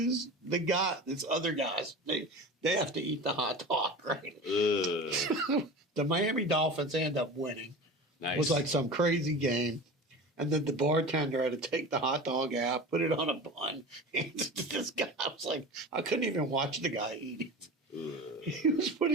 this other guys, they have to eat the hot dog, right? The Miami Dolphins end up winning. Nice. It was like some crazy game. And then the bartender had to take the hot dog out, put it on a bun. And this guy, I was like, I couldn't even watch the guy eat it. He was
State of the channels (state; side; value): normal; both; correlation 0.33